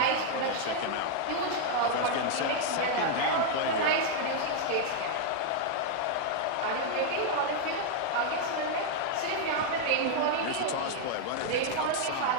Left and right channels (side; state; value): both; different; correlation 0.00